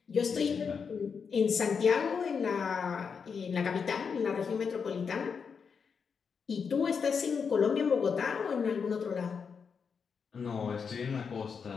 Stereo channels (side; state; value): right; quieter; 6.0 dB